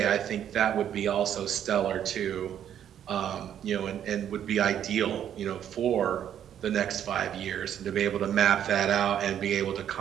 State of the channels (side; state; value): left; quieter; 9.9 dB